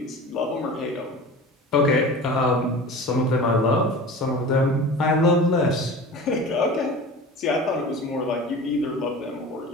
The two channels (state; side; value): normal; both; correlation 0.36